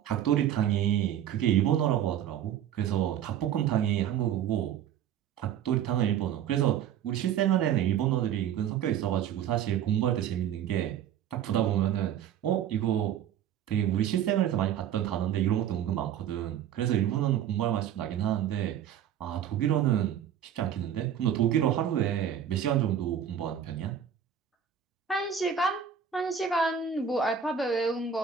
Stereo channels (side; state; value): left; quieter; 9.4 dB